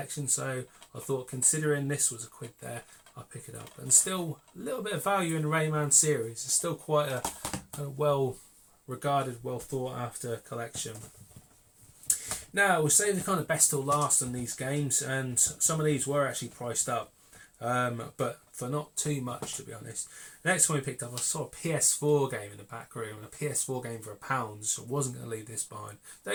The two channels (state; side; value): identical; both; correlation 1.00